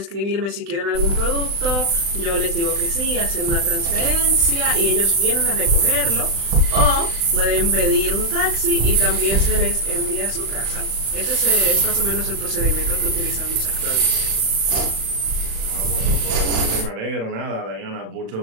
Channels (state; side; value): late; left; 35 ms